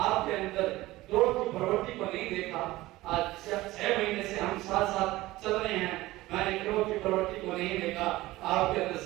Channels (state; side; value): quieter; left; 18.0 dB